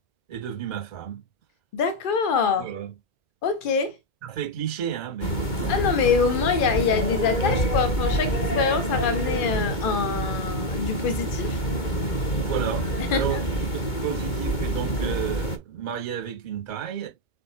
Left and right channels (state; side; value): late; right; 2.2 ms